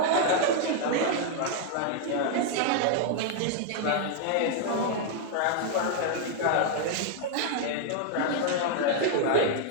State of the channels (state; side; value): different; both; correlation 0.00